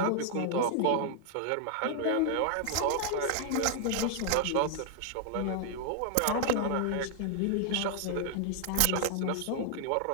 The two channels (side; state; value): both; different; correlation 0.00